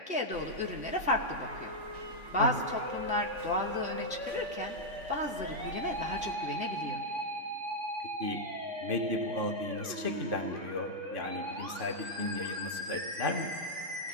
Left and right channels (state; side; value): late; left; 3.5 ms